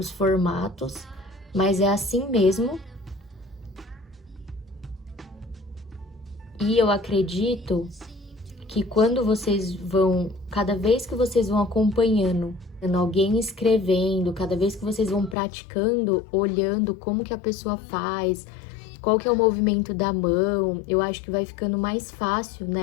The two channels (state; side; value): drops out; right; at 15.4 s